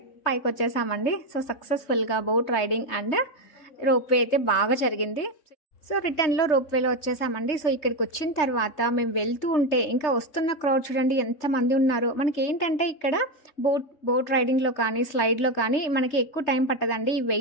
పైకి వచ్చేసామండి. సో సక్సెస్ఫుల్గా boat riding and rope way అయితే బాగా జరిగింది. సో రిటర్న్లో రోప్ వేలో వచ్చేసామండి. సో ఇక్కడికి వచ్చిన తర్వాత మేము వెళ్తూ ఉంటే ఇంకా వస్తున్న క్రౌడ్ చూడండి ఎంతమంది ఉన్నారో. మనకి ఏంటంటే ఇక్కడ బోట్ రైడింగ్లో కానీ స్లైడ్లో కానీ మనకి ఎక్కువ టైం పట్టదండి. ఈ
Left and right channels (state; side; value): late; right; 3.3 ms